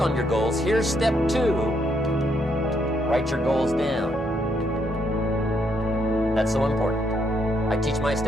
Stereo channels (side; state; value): both; normal; correlation 0.75